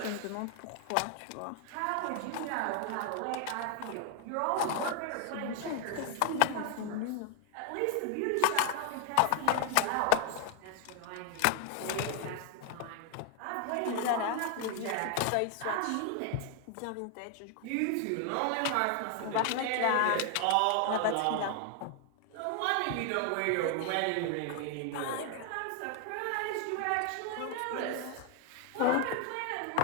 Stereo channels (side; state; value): both; different; correlation 0.00